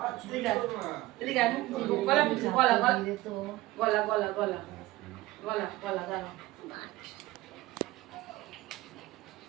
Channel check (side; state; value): left; quieter; 18.3 dB